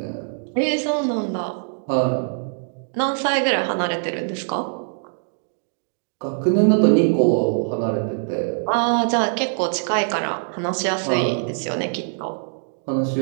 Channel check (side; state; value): left; silent; digital silence